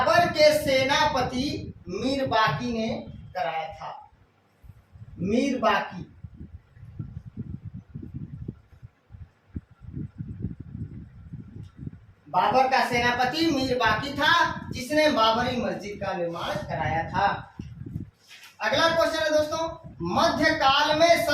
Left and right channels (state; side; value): identical; both; correlation 1.00